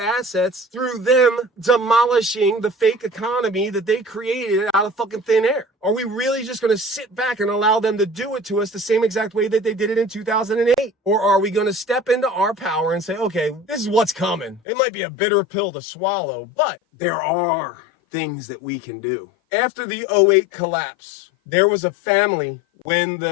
through them demolishing the fake economy that they created out of fucking thin air. Are we really just going to sit back and allow them to do it to us the same exact way that they did it in 2008? Or are we going to step into our power and say, okay, this is what's coming. It might be a bitter pill to swallow, but there are things that we can do. After the 2008 collapse, there was a family, when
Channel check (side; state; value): right; drops out; at 14.6 s